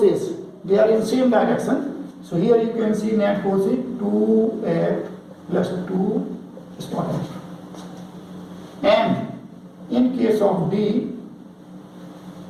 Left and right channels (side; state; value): both; identical; correlation 1.00